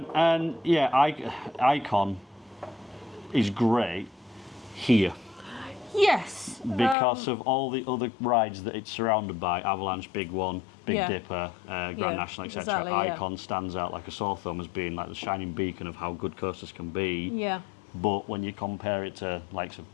and yeah, Icon is great here Yes. because of all the other rides that it's surrounded by: Avalanche, Big One, Big Yeah. Dipper, Grand Yeah, National, etc. exactly, yeah. Icon stands out like a sore thumb as being like the shining beacon of how good coasters can be. Yeah. But when you compare it to likes of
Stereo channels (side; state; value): right; drops out; at 7.0 s